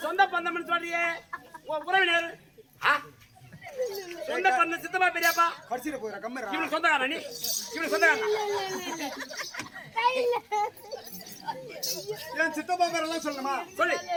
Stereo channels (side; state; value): both; identical; correlation 1.00